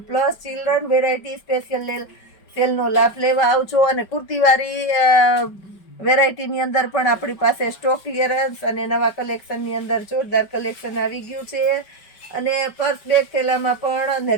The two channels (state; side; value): late; right; 5.3 ms